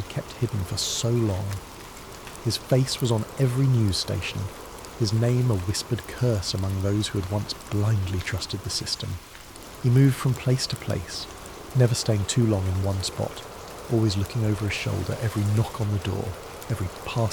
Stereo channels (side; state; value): both; identical; correlation 1.00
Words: kept hidden for so long. His face was on every news station, his name a whispered curse among those who had once blindly trusted the system. He moved from place to place, never staying too long in one spot, always looking over his shoulder every knock on the door, Every